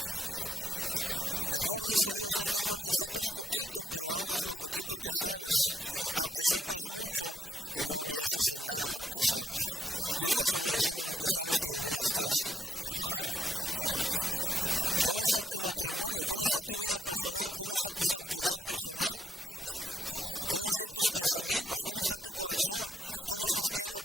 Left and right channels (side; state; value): both; normal; correlation 0.76